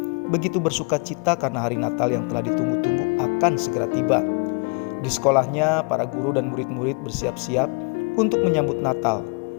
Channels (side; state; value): right; quieter; 33.8 dB